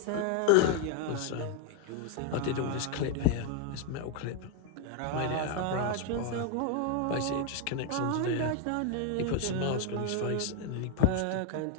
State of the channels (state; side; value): different; both; correlation 0.01